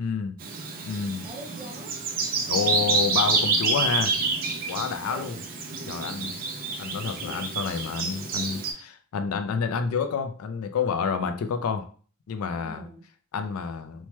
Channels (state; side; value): normal; both; correlation 0.03